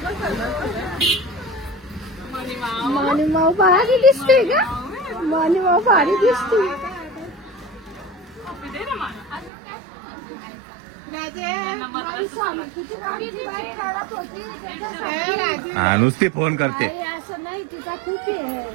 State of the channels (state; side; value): drops out; left; at 9.5 s